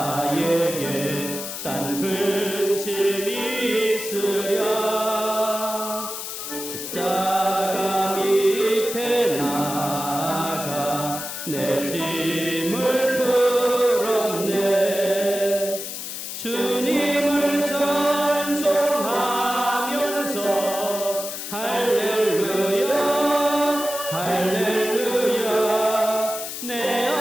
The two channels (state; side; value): noise; left; hiss, 7 dB below the sound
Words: 딴 근심이 있으랴. 십자가 밑에 나가 내 짐을 풀었네. 주님을 찬송하면서 할렐루야 할렐루야. 내